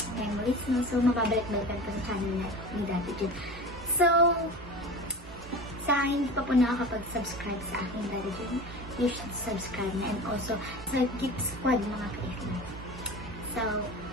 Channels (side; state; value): both; normal; correlation 0.33